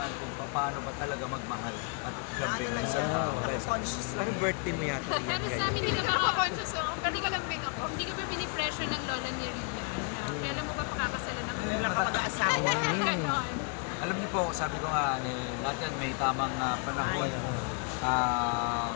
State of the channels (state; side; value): quieter; right; 36.8 dB